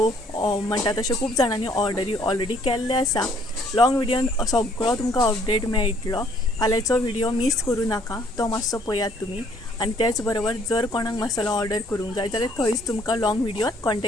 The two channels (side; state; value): both; normal; correlation 0.63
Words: म्हणटा तशें खूब जाणांनी ऑर्डरी ऑलरेडी केल्ले आसा. लॉंग व्हिडियोन सगळो तुमकां अपडेट मेळटलो. फाल्यांचो व्हिडिओ मिस करूं नाका तो मातसो पळयात तुमी. आनी त्याच बरोबर जर कोणाक मसालो ऑर्डर करूंक जाय जाल्यार थंयच तुमकां लॉंग व्हिडियोन